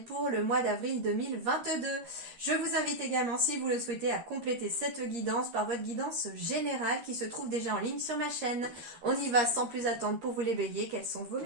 pour le mois d'avril 2022. Je vous invite également, si vous le souhaitez, à compléter cette guidance par votre guidance générale qui se trouve déjà en ligne sur ma chaîne. On y va sans plus attendre pour vous les béliers. Quels sont vos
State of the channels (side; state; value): left; late; 13 ms